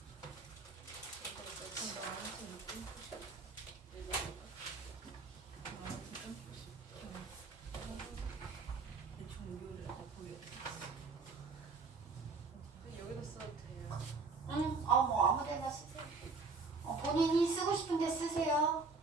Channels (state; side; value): quieter; left; 4.3 dB